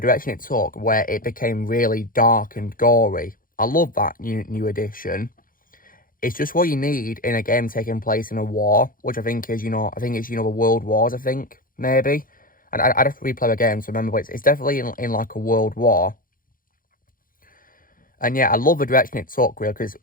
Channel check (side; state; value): right; late; 0.41 ms